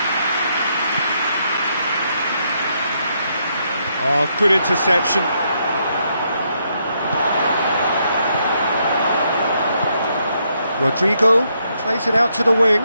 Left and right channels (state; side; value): inverted; both; correlation -0.76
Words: Oh, good interception. Rodrigo plays it out to the wing.